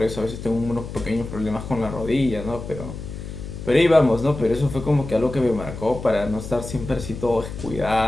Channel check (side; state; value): left; noise; hum, 9 dB below the sound